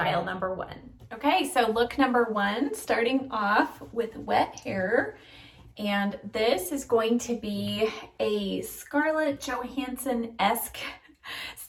number one. Okay, so look number one, starting off with wet hair. And this is going to be a Scarlett Johansson-esque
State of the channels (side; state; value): both; identical; correlation 1.00